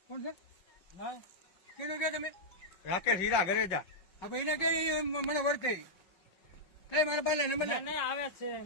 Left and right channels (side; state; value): right; late; 5.5 ms